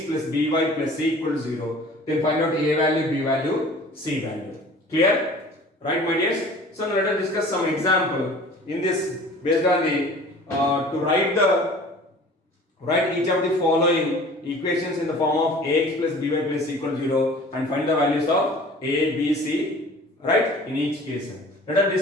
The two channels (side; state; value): both; normal; correlation 0.45